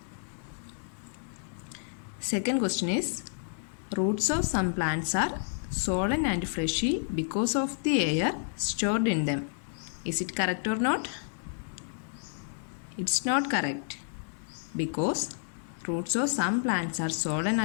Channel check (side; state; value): right; silent; 58 dB below the other